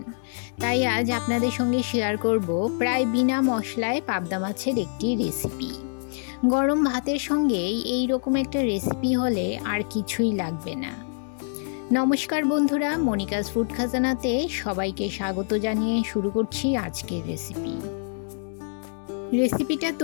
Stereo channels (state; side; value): silent; right; digital silence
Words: তাই আজ আপনাদের সঙ্গে শেয়ার করব প্রায় বিনা মশলায় পাবদা মাছের একটি রেসিপি। গরম ভাতের সঙ্গে এই রকম একটা রেসিপি হলে আর কিছুই লাগবে না। নমস্কার বন্ধুরা, মনিকাস ফুড খাজানাতে সবাইকে স্বাগত জানিয়ে শুরু করছি আজকের রেসিপিটা